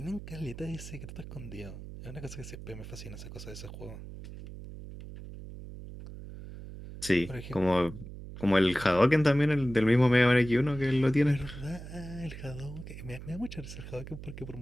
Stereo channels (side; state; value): right; noise; hum, 12 dB below the sound